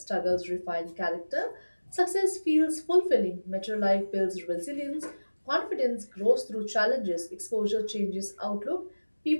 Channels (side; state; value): both; inverted; correlation -1.00